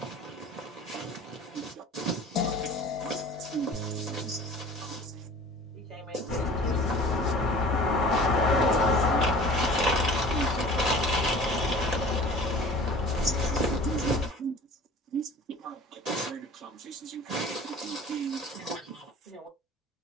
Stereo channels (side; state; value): both; normal; correlation 0.44